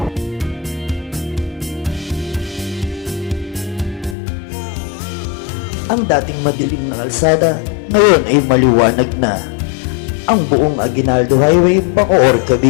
Ang dating madilim na kalsada, ngayon ay maliwanag na. Ang buong Aguinaldo Highway, Bacoor,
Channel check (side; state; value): right; drops out; at 4.2 s